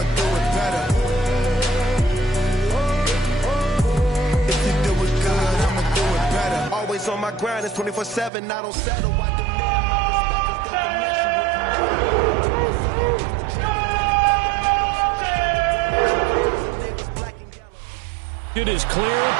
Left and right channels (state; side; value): drops out; left; at 8.3 s